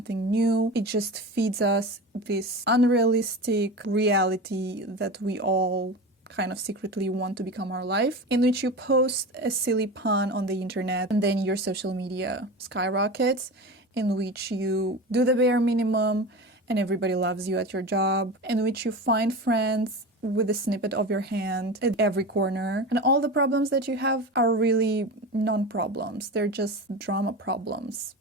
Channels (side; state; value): both; normal; correlation 0.28